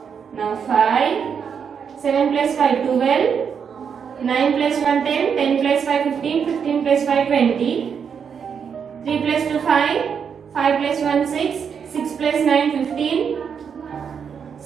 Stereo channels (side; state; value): left; quieter; 7.0 dB